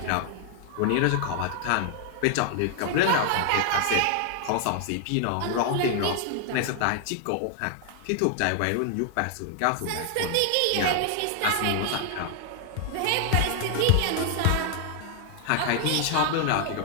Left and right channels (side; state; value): both; different; correlation 0.00